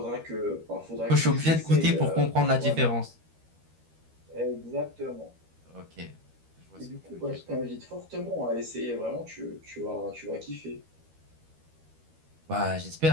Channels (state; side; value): late; left; 13 ms